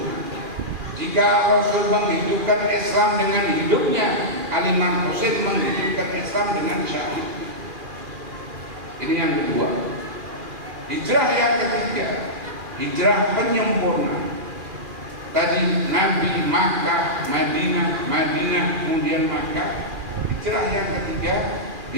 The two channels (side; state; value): left; late; 2.4 ms